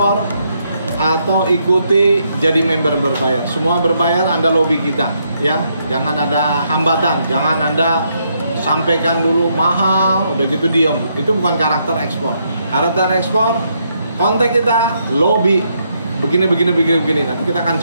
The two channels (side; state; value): both; inverted; correlation -0.76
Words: atau ikuti jadi member berbayar. Semua berbayar, Anda lobby kita ya. Jangan ada hambatan, jangan Anda sampaikan dulu mahal, udah gitu diem. Itu bukan karakter ekspor. Karakter ekspor, kontak kita, lobby, begini. Nanti kita akan